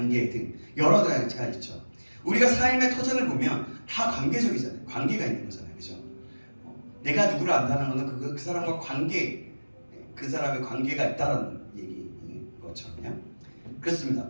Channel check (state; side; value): inverted; both; correlation -1.00